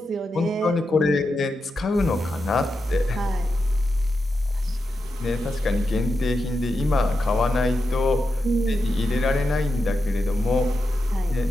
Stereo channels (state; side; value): normal; both; correlation 0.88